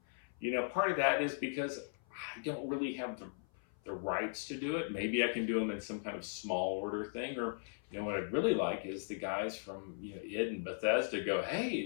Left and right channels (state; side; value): silent; right; 53 dB below the other